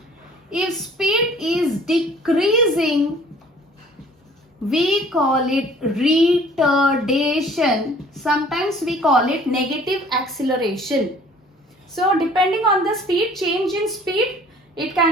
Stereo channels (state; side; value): normal; both; correlation 0.53